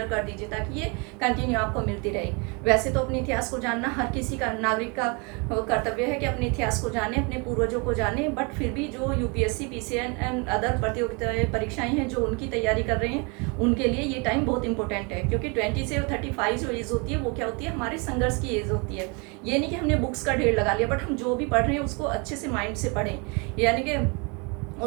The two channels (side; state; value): left; quieter; 31.5 dB